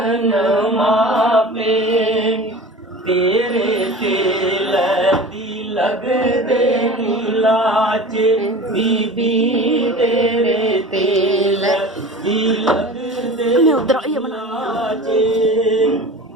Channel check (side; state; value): both; normal; correlation 0.37